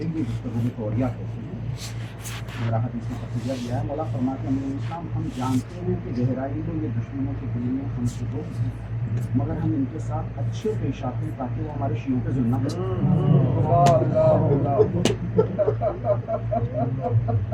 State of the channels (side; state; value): both; identical; correlation 1.00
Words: گفتگو میں توریہ کہتے ہیں. میرا حدیث میں تقیہ دیا ہے. مولا فرماتے ہیں امیر اسلام ہم جانتے ہیں کہ گہرائی میں یہ دشمنوں کے دل میں ہم سے دو مگر ہم ان کے ساتھ اچھے پیش آتے ہیں تاکہ وہ ہمارے شیعوں پہ ظلم نہ